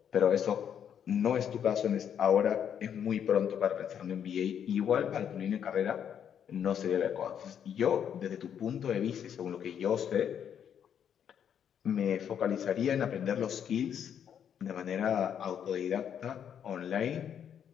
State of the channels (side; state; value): right; quieter; 8.7 dB